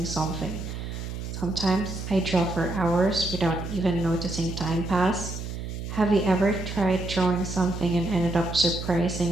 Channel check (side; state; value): right; noise; hum, 7 dB below the sound